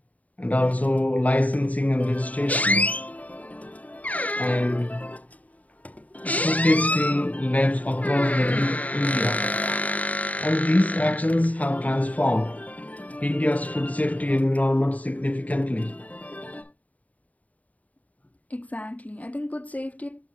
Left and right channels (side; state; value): right; late; 0.072 ms